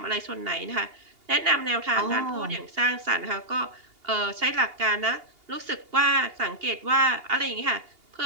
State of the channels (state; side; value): late; left; 2.8 ms